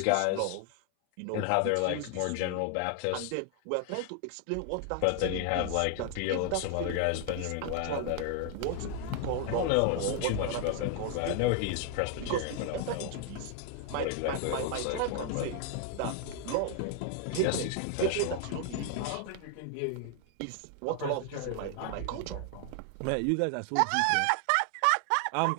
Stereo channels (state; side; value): different; both; correlation 0.00